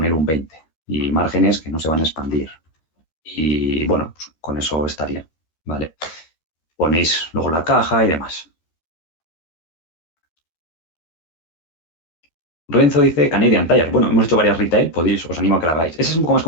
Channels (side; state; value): right; late; 13 ms